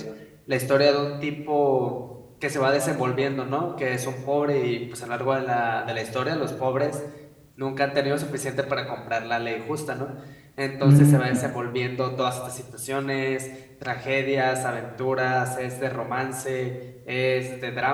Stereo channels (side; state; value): both; identical; correlation 1.00